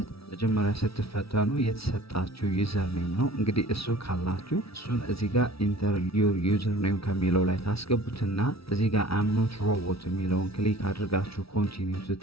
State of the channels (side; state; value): right; late; 0.76 ms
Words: መጀመሪያ ስትፈተኑ የተሰጣችሁ ዩዘር ኔም ነው። እንግዲህ እሱ ካላችሁ እሱን እዚህ ጋር ኢንተር ዩር ዩዘር ኔም ከሚለው ላይ ታስገቡትና እዚህ ጋር አም ኖት ሮቦት የሚለውን ክሊክ አድርጋችሁ ኮንቲኒው